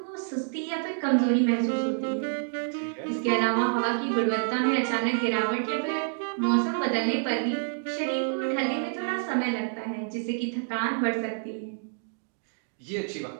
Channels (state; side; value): silent; left; digital silence